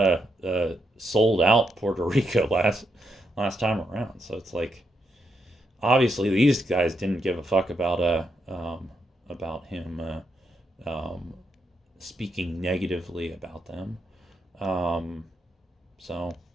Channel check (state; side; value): normal; both; correlation 0.81